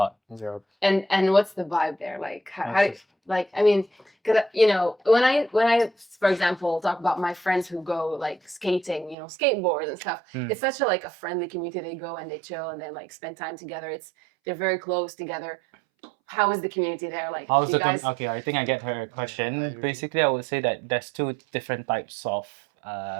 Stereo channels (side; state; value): left; drops out; at 9.2 s